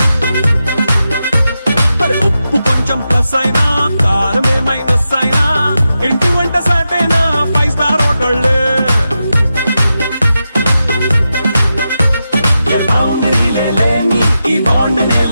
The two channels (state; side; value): inverted; both; correlation -0.89